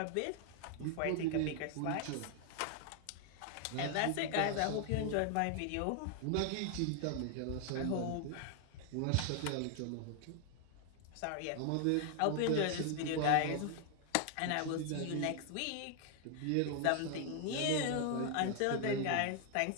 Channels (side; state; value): both; different; correlation 0.00